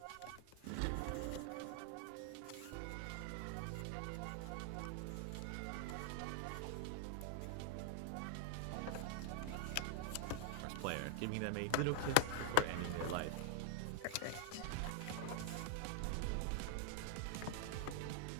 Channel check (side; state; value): both; different; correlation -0.01